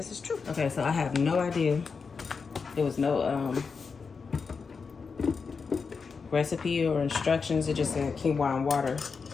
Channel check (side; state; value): right; quieter; 5.2 dB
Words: is true. Okay, so I have no idea. There was no recipe or instructions. It just said quinoa and water.